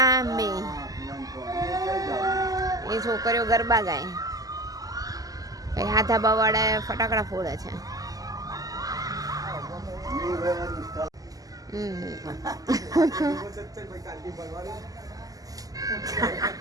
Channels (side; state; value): left; late; 0.17 ms